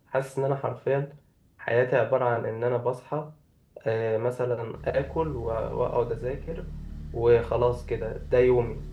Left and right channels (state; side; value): identical; both; correlation 1.00